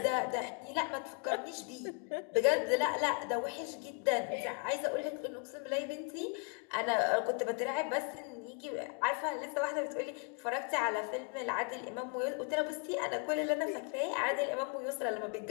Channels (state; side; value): quieter; right; 37.6 dB